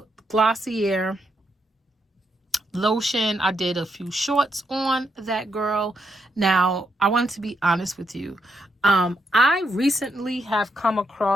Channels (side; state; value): both; normal; correlation 0.80